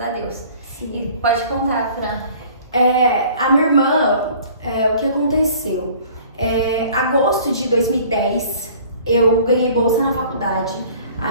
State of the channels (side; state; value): both; inverted; correlation -0.50